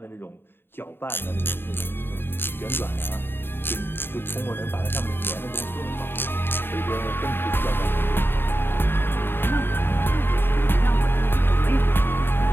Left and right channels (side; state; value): right; late; 0.11 ms